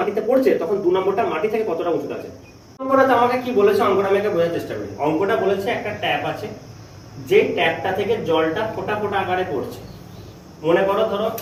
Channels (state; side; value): identical; both; correlation 1.00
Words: পড়ছে তখন 2 নম্বরটা মাটি থেকে কতটা উঁচুতে আছে। অঙ্কটা আমাকে কি বলেছে, অঙ্কটা আমি বোঝার চেষ্টা করি। অঙ্কটা বলেছে একটা ট্যাপ আছে, যে ট্যাপটা থেকে জলটা ফোঁটা ফোঁটা আকারে পড়ছে। মনে করো ধরো